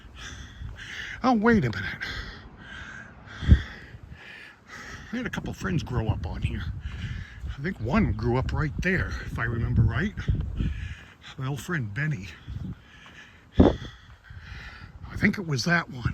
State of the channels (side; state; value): both; identical; correlation 1.00